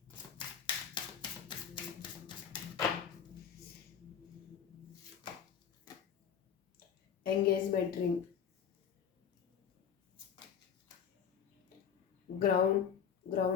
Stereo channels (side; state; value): right; quieter; 7.9 dB